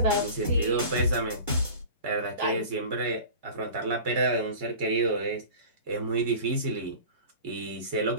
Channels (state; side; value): inverted; both; correlation -0.38